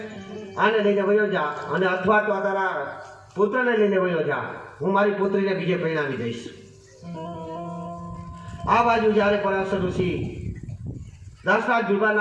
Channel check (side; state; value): both; identical; correlation 1.00